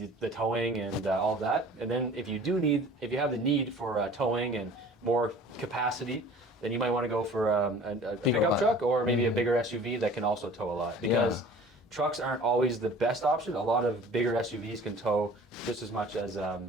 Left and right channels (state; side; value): normal; both; correlation 0.46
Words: towing and all of that. And then if you have the need for towing and more capacity, then you might want to go for a pickup one. truck or maybe a bigger SUV that can also tow a lot because trucks aren't always the best option. A lot of bigger SUVs can tow just as much as